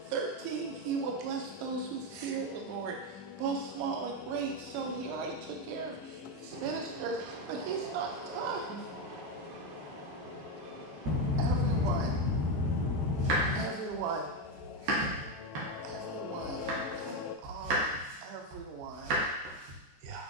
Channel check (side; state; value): left; late; 13 ms